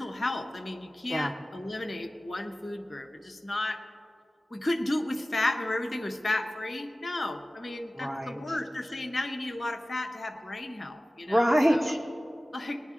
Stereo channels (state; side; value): normal; both; correlation 0.97